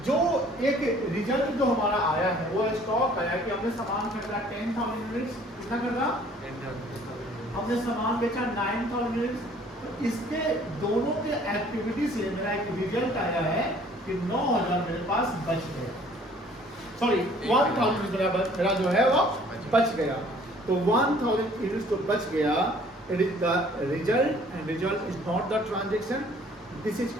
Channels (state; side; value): normal; both; correlation 0.56